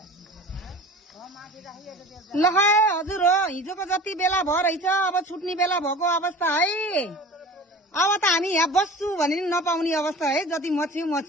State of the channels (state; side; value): normal; both; correlation 0.39